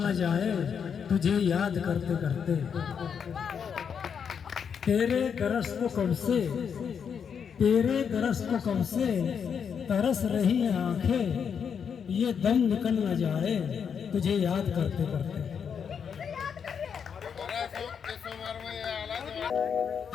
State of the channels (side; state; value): right; quieter; 7.1 dB